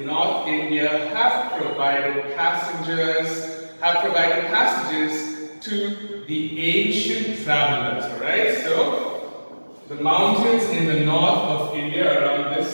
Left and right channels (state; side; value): inverted; both; correlation -1.00